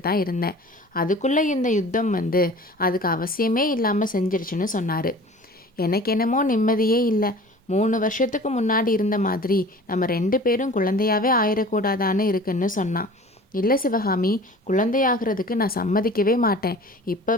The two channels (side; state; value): both; normal; correlation 0.43